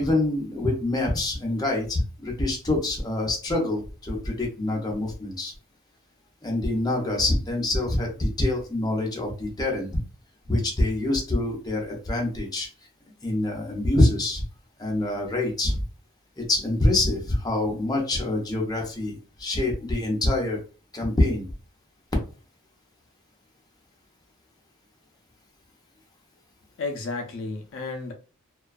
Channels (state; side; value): normal; both; correlation 0.70